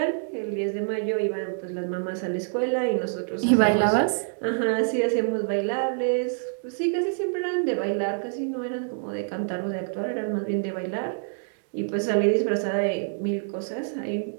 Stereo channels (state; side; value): silent; left; digital silence